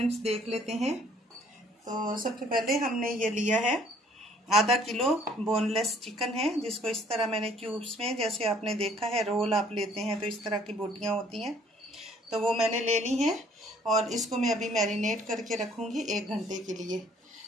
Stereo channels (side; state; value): both; normal; correlation 0.59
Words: देख लेते हैं। तो सबसे पहले हमने ये लिया है आधा किलो बोनलेस चिकन है, जिसको इस तरह मैंने क्यूब्स में, जैसे आपने देखा है रोल आप लेते हैं तो इस तरह की बोटियां होती हैं, तो वो मैंने ले ली हैं। और इसको मैं अभी मैरिनेट करके रखूँगी 1 घंटे के लिए।